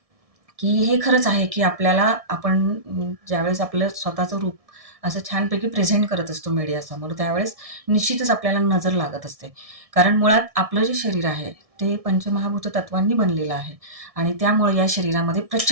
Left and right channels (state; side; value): late; left; 1.6 ms